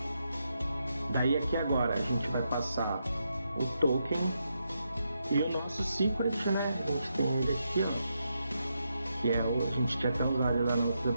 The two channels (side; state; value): both; inverted; correlation -0.83